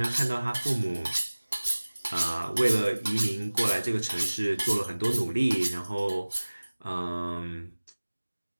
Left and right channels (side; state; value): both; inverted; correlation -1.00